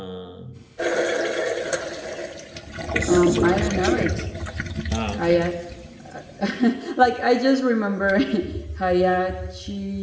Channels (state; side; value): identical; both; correlation 1.00